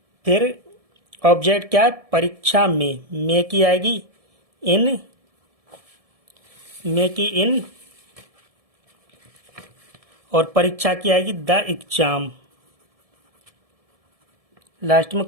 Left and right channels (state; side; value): late; left; 1.7 ms